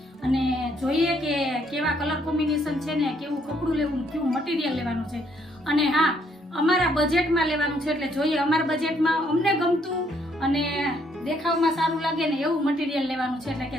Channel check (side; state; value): both; normal; correlation 0.69